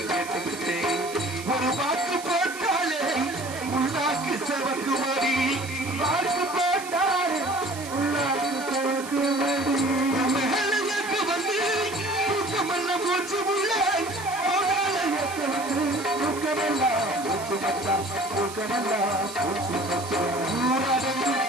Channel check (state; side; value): noise; right; hiss, 13 dB below the sound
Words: கேட்டுக்கிட்டேன். ஒரு வாக்கு போட்டாலே உள்நாக்கு செவக்கு மடி வாக்கு போட்டாலே உள்நாக்கு செவக்கு மடி மேலுக்கு வந்து தூக்கமெல்லாம் மூச்சு உள்ள தூக்கமெல்லாம் மூச்சு மச்சா தூக்கமெல்லாம் மூச்சு மச்சா ஊரடங்கு